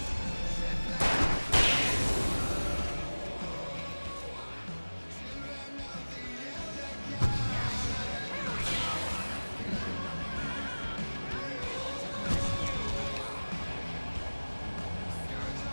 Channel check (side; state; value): both; inverted; correlation -1.00